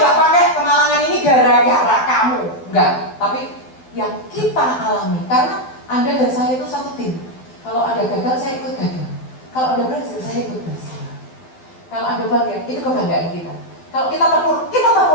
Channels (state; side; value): late; right; 12 ms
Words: pakai kemalangan ini gara-gara kamu, enggak. Tapi yang kita alami, karena Anda dan saya itu satu tim. Kalau ada gagal, saya ikut gagal. Kalau ada berhasil, saya ikut berhasil. Kalau ada bangga, itu kebanggaan kita. Kalau kita